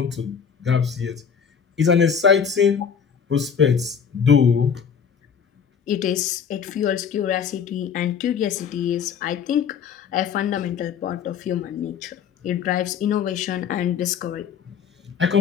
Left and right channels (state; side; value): quieter; right; 7.2 dB